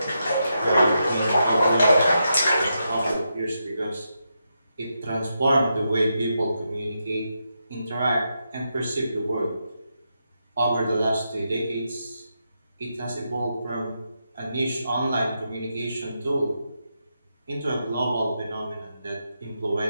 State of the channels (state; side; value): inverted; both; correlation -0.84